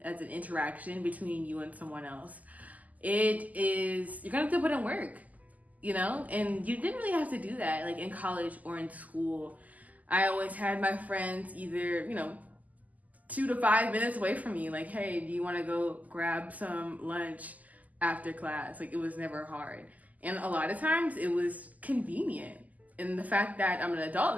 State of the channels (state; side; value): late; left; 0.078 ms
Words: that's an interaction between you and someone else. You're gonna have to put in work, you know? And you didn't really have to do that, like in college or in school. I always had my friends either, 2 to 5 minutes away from me, like, hey, do you wanna go grab some lunch after class? Like, it was never hard. And a lot of times it was convenient. And the fact that I'm an adult